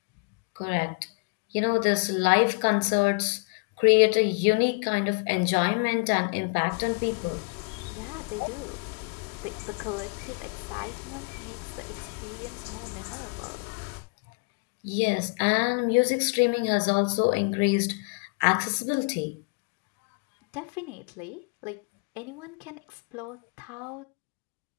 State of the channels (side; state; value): right; quieter; 34.6 dB